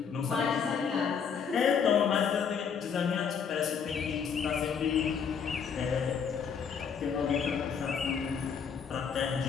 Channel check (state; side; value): quieter; right; 6.8 dB